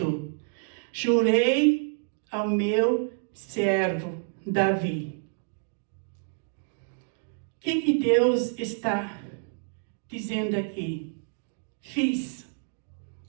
jurei ao meu servo Davi. O que Deus está dizendo aqui? Fiz.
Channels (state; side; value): silent; left; digital silence